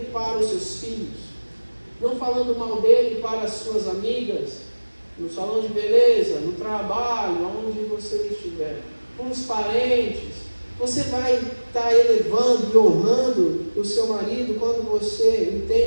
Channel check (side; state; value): both; inverted; correlation -1.00